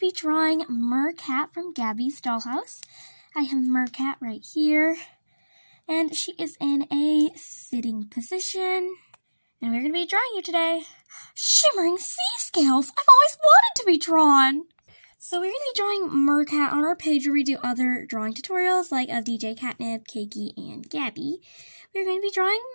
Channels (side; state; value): both; inverted; correlation -1.00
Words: drawing Mercat from Gabby's Dollhouse. I have Mercat right here, and she is in a sitting position, and we're going to be drawing you today. Shimmering sea scales! I've always wanted to be drawn! So we're going to be drawing Mercat on our page where we do other drawing tutorials like of DJ Catnip, Cakey, and Gabby. We're going to be drawing